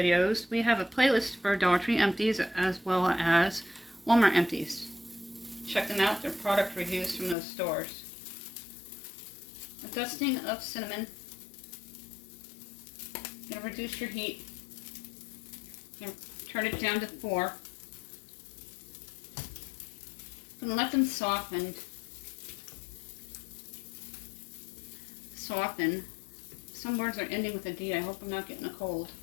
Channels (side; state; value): right; drops out; at 7.4 s